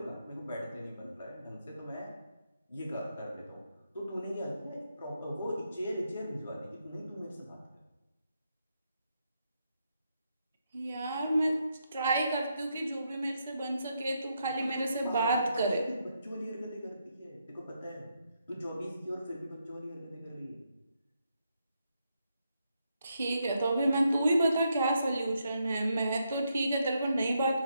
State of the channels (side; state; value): both; inverted; correlation -0.80